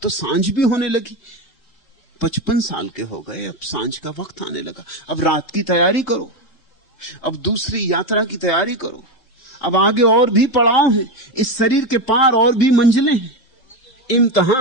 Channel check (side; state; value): right; late; 3.8 ms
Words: तो सांझ भी होने लगी। 55 साल के हो गए, अब सांझ का वक्त आने लगा। अब रात की तैयारी करो, अब दूसरी यात्रा की तैयारी करो। अब आगे और भी पड़ाव हैं, इस शरीर के पार और भी मंजिलें हैं,